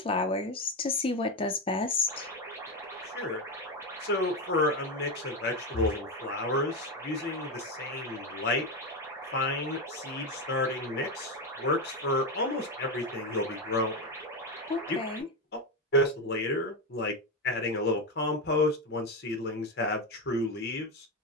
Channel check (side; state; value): both; normal; correlation 0.12